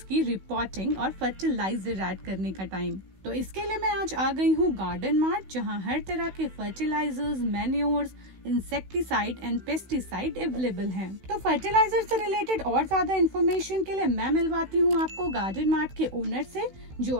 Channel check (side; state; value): left; late; 16 ms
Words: की रिपोर्टिंग और फर्टिलाइजर ऐड करने का टाइम। तो इसके लिए मैं आज आ गई हूँ गार्डन मार्ट, जहाँ हर तरह के fertilizers, manures, insecticide and pesticide available हैं। तो फर्टिलाइजर से रिलेटेड और ज्यादा इन्फॉर्मेशन के लिए मैं मिलवाती हूँ आपको गार्डन मार्ट के ओनर से, जो